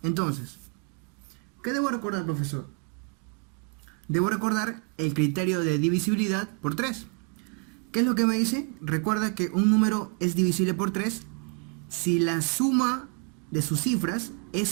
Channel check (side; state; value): left; quieter; 37.1 dB